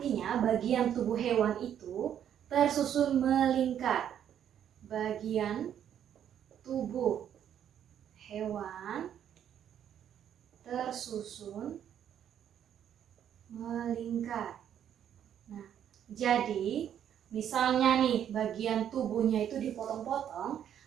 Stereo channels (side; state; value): left; quieter; 9.7 dB